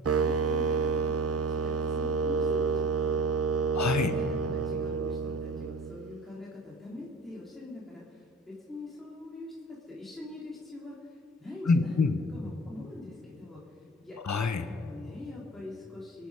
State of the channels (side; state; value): both; normal; correlation 0.38